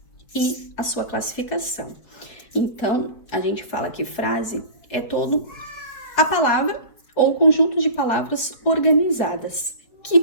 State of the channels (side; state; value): right; late; 4.7 ms